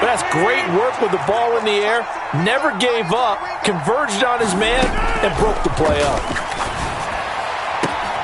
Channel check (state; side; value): identical; both; correlation 1.00